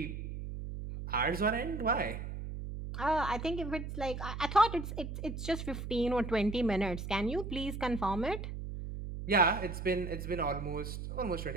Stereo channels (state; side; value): noise; right; hum, 6 dB below the sound